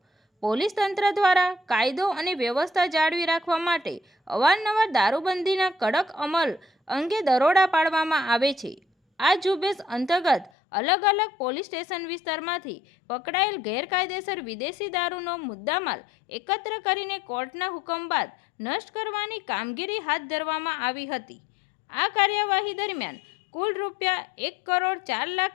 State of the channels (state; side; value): drops out; right; at 10.5 s